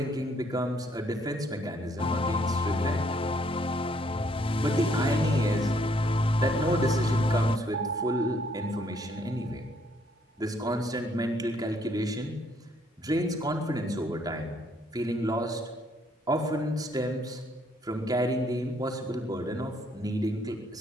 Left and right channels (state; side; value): normal; both; correlation 0.68